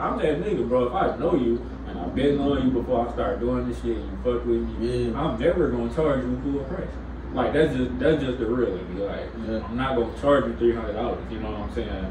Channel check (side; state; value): both; identical; correlation 1.00